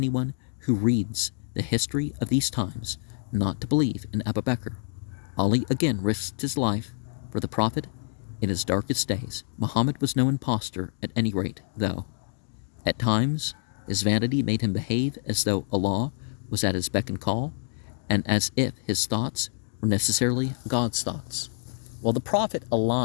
who reads the history of these times not to believe in Abu Bakr. Ali again risked his life for the Prophet in his darkest days. Muhammad was no impostor at any rate, though. At times, his vanity made him behave as though Allah was at his beck and call, and as if his thoughts were necessarily God's thoughts. Well, the Prophet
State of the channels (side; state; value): right; silent; digital silence